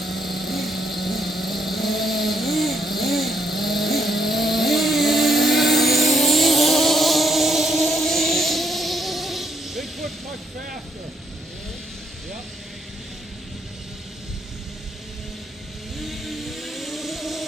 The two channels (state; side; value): normal; both; correlation 0.72